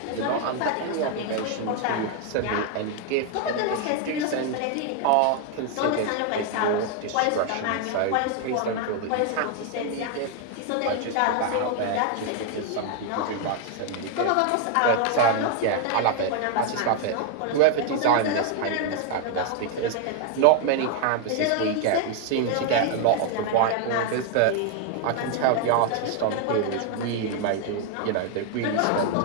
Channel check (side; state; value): both; different; correlation 0.00